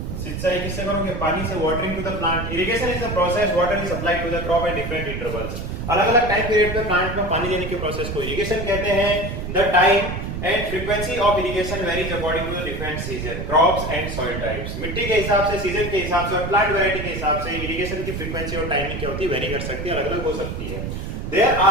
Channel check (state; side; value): noise; right; rumble, 5 dB below the sound